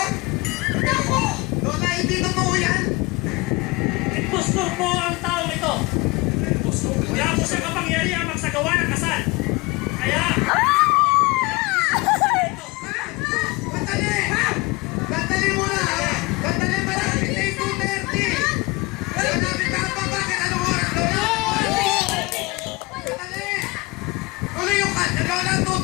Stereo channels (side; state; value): right; quieter; 24.2 dB